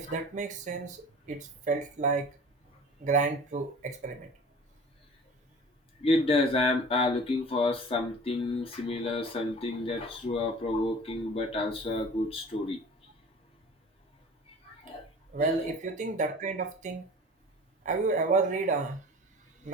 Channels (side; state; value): both; normal; correlation 0.42